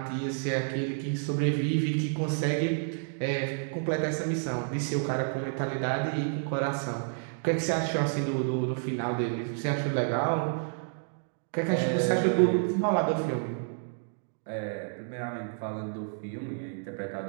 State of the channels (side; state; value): left; silent; digital silence